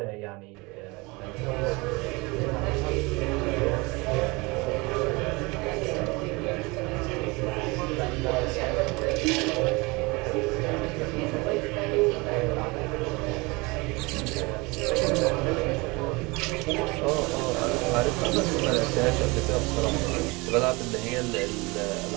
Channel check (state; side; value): quieter; left; 25.5 dB